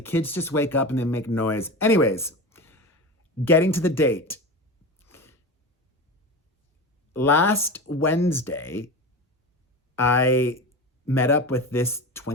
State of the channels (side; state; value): both; normal; correlation 0.26